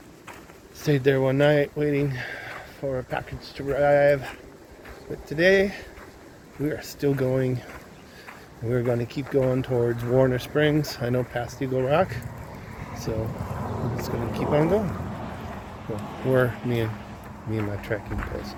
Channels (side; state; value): both; identical; correlation 1.00